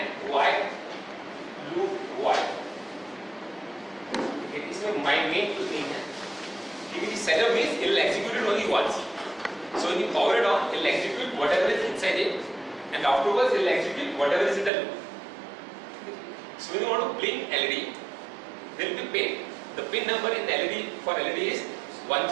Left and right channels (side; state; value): left; drops out; at 14.7 s